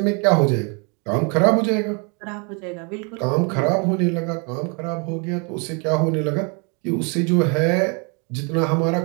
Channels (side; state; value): left; quieter; 34.5 dB